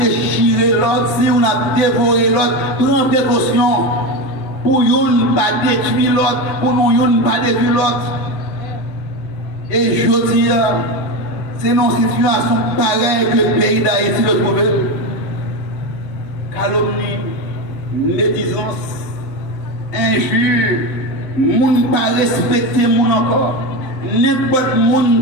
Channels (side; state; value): right; late; 8.3 ms